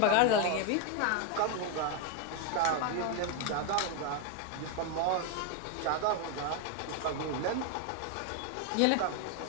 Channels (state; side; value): different; both; correlation 0.01